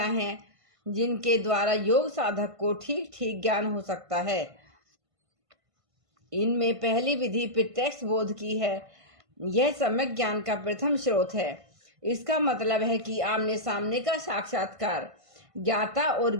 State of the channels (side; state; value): left; late; 1.5 ms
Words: हैं जिनके द्वारा योग साधक को ठीक ठीक ज्ञान हो सकता है। इनमें पहली विधि प्रत्यक्ष बोध की है। यह सम्यक ज्ञान का प्रथम स्रोत है। इसका मतलब है कि आमने सामने का साक्षात्कार। ज्ञाता और